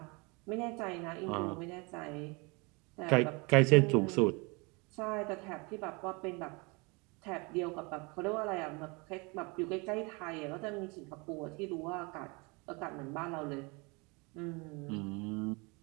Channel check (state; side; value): quieter; left; 28.6 dB